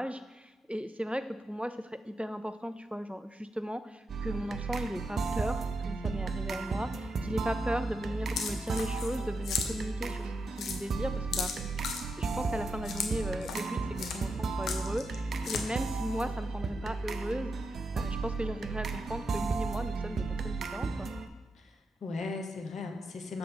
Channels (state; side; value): normal; both; correlation 0.85